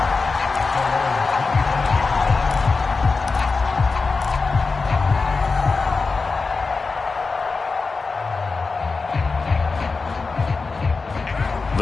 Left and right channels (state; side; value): quieter; right; 4.2 dB